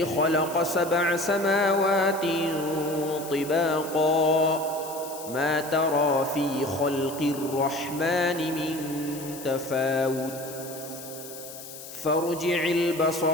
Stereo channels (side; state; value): left; noise; hiss, 14 dB below the sound